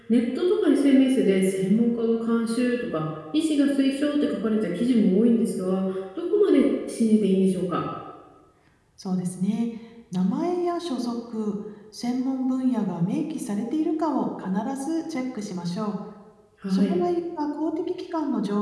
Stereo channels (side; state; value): both; identical; correlation 1.00